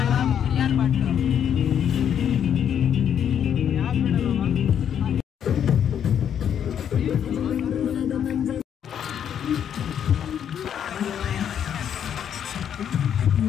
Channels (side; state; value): right; quieter; 8.9 dB